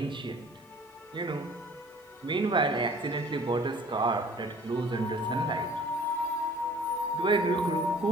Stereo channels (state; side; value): normal; both; correlation 0.50